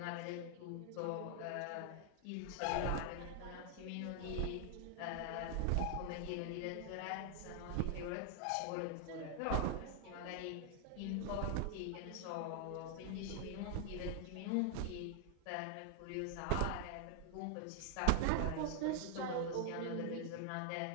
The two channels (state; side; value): different; both; correlation 0.00